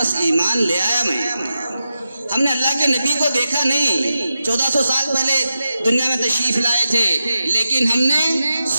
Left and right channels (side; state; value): both; inverted; correlation -0.90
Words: ایمان لے آیا میں. ہم نے اللہ کے نبی کو دیکھا نہیں، 1400 سال پہلے دنیا میں تشریف لائے تھے، لیکن ہم نے